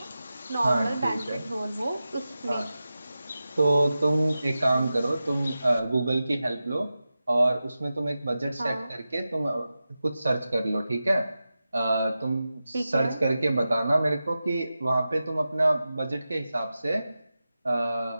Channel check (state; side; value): inverted; both; correlation -0.93